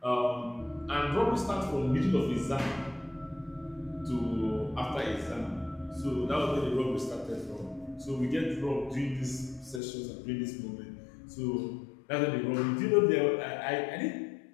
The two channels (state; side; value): drops out; right; at 9.8 s